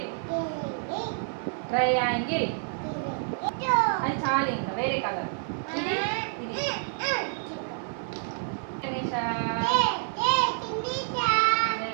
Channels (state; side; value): silent; left; 59 dB below the other